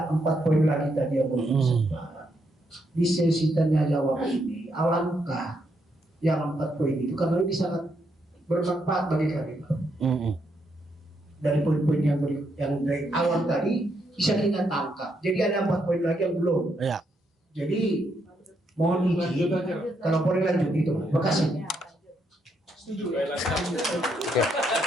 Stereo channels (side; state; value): both; normal; correlation 0.77